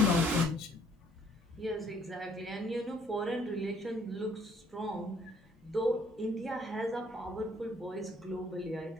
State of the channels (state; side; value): normal; both; correlation 0.63